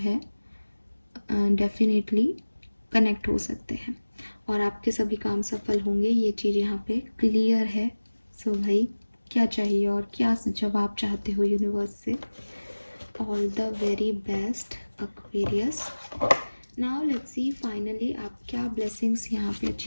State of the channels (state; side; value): inverted; both; correlation -1.00